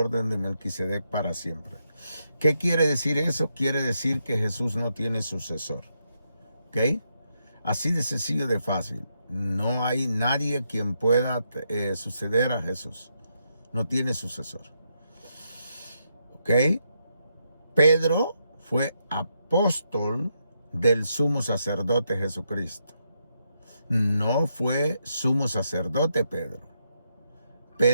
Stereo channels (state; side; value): inverted; both; correlation -0.80